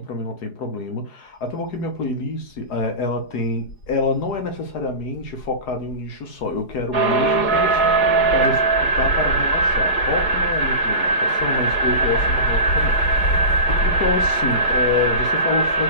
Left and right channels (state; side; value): late; right; 4.8 ms